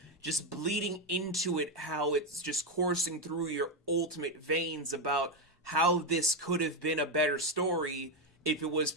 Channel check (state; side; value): normal; both; correlation 0.09